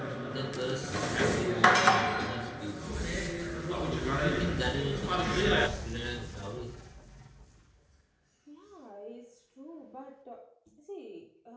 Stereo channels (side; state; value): both; identical; correlation 1.00